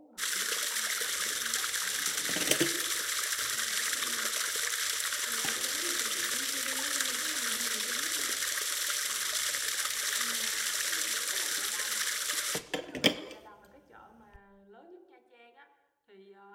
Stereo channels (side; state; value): both; identical; correlation 1.00